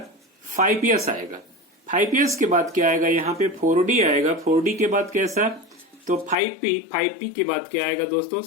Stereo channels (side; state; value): right; drops out; at 6.4 s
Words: 5s आएगा। 5s के बाद क्या आएगा, यहाँ पे 4d आएगा। 4d के बाद कैसा, तो 5p। 5p के बाद क्या आएगा दोस्तों,